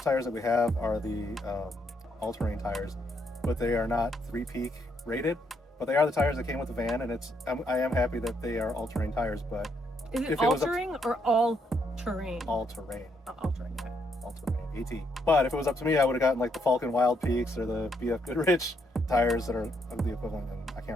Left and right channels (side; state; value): both; normal; correlation 0.74